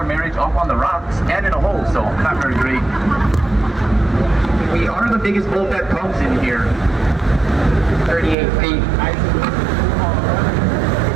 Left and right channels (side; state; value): left; drops out; at 8.3 s